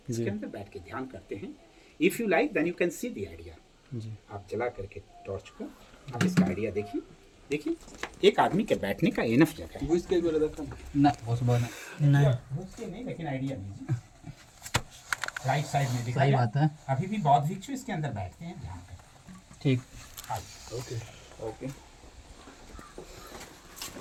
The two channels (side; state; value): both; identical; correlation 1.00